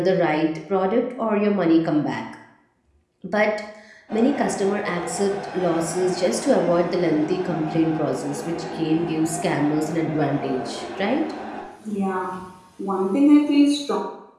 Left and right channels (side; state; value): both; identical; correlation 1.00